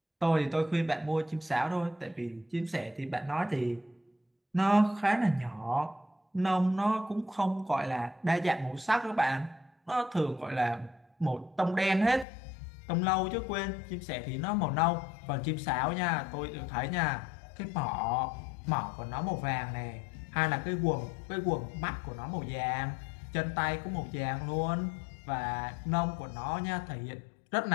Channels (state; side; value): drops out; right; at 12.2 s